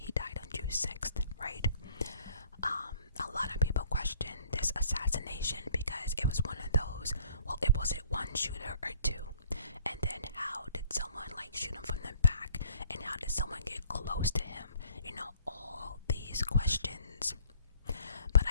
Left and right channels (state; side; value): inverted; both; correlation -0.57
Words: died on June 6th, right? A lot of people question this assassination because it was one of those, well, was it one shooter or two? And then how did someone shoot him from the back? And how did someone get close to him? All these questions. But